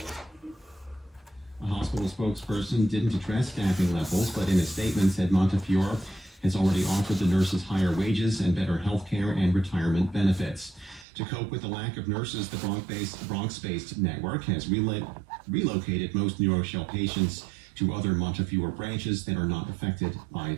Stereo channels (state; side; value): drops out; left; at 11.1 s